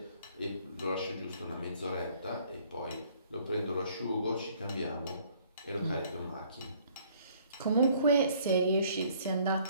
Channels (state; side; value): inverted; both; correlation -0.60